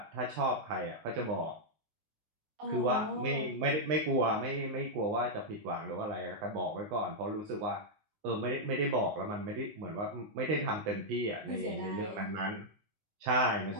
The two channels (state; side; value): late; left; 19 ms